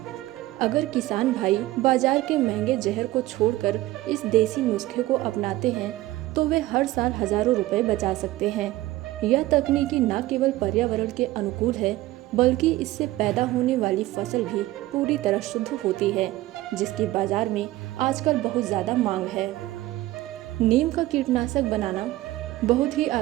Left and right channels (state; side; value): quieter; left; 17.0 dB